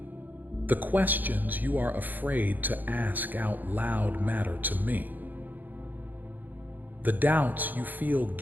The questions you are afraid to ask out loud matter to me. The doubts you feel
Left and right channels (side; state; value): left; late; 0.085 ms